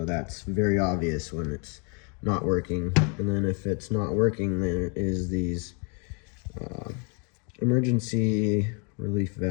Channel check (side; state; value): right; quieter; 36.1 dB